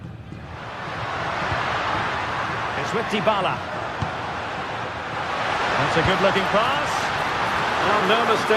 It's with Dybala. That's a good-looking pass. Well, no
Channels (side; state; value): both; identical; correlation 1.00